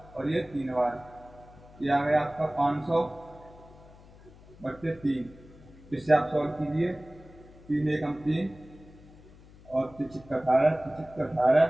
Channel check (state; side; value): noise; left; hum, 22 dB below the sound